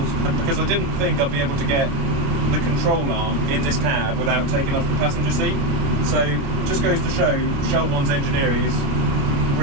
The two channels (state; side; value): late; left; 29 ms